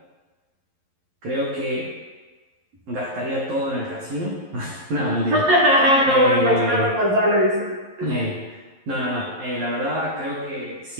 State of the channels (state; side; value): late; left; 11 ms